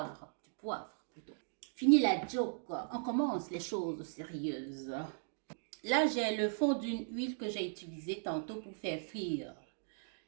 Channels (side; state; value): left; silent; digital silence